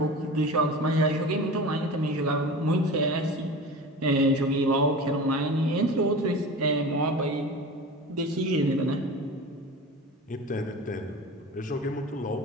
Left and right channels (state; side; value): normal; both; correlation 0.33